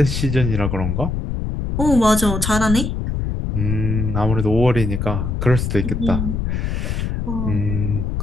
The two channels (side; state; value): left; noise; rumble, 2 dB below the sound